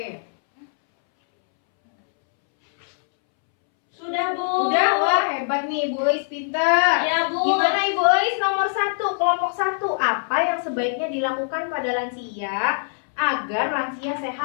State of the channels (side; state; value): right; silent; 64 dB below the other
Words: Sudah, Bu. Udah, wah hebat nih Ibu Eis, pintar. Iya, Bu. Gimana Ibu Eis nomor 1, kelompok 1? Apa yang sebaiknya dilakukan pada lansia agar lansia